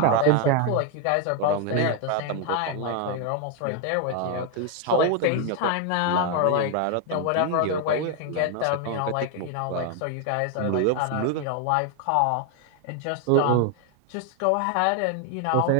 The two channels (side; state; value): both; different; correlation 0.01